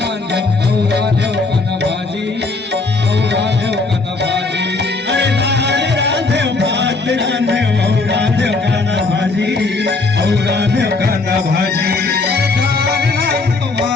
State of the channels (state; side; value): quieter; right; 3.6 dB